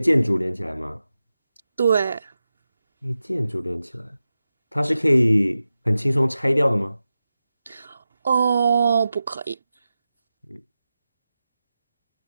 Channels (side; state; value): both; inverted; correlation -0.93